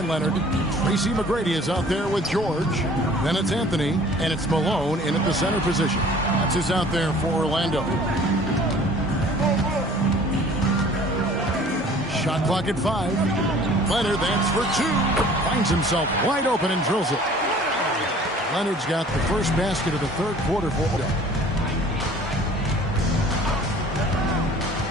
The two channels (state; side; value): normal; both; correlation 0.50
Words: Leonard. Tracy McGrady is out there with George. Then it's Anthony, and it's Malone in at the center position. That's who's out there for Orlando. Shot clock at 5. Leonard, that's for 2. Finds himself wide open and drills it. Leonard's got the first basket of the third quarter for them.